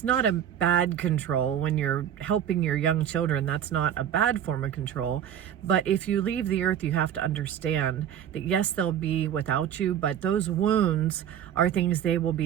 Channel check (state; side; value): quieter; left; 9.7 dB